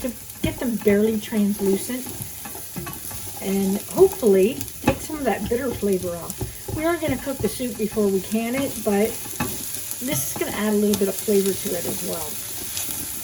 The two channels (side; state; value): both; identical; correlation 1.00